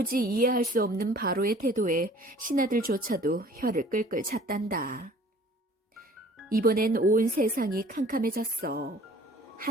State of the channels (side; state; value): both; normal; correlation 0.51